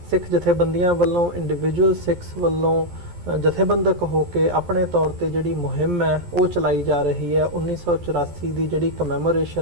सिख जथेबंदियां वालों, इंडिविजुअल सिख्स वालों जथेबंदक होकर अपने तौर पर जिहड़ी मुहिम है वो चलाई जा रही है। 1984 की जिहड़ी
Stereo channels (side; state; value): left; late; 11 ms